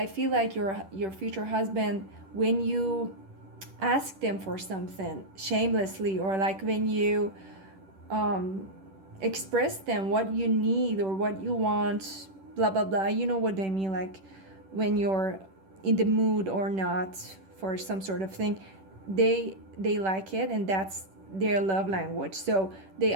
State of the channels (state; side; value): late; left; 10 ms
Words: feel like your future husband, when you ask them for something shamelessly, or like when you um express them what you need or what you want, blah blah blah, you know what I mean, like when you're in the mood or not for some sort of thing, they like it, and that's their love language. So they